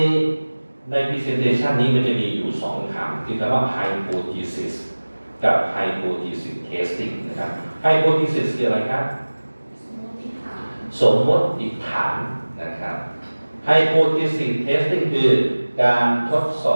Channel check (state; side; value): inverted; both; correlation -1.00